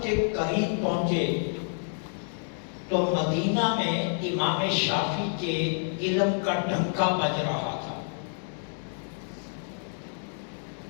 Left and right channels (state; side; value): silent; right; 59 dB below the other